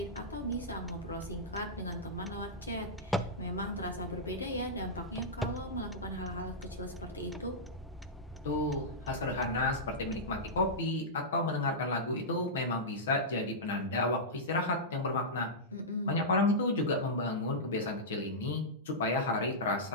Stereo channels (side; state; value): both; normal; correlation -0.12